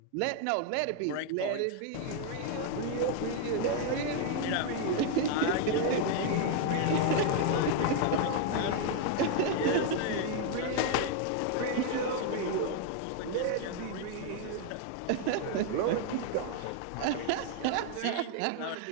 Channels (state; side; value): different; both; correlation 0.00